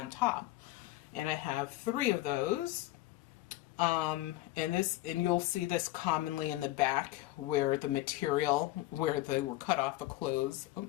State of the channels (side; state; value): right; quieter; 17.2 dB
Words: top. And I have 3 of those. And you'll see this commonly in the back where the material where they were cut off the clothes,